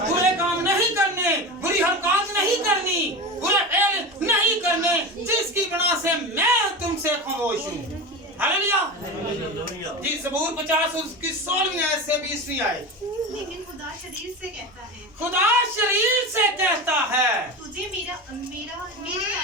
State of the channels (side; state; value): both; normal; correlation 0.25